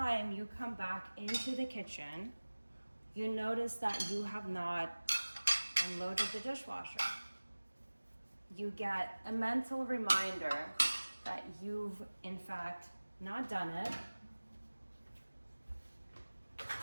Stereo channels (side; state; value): both; inverted; correlation -1.00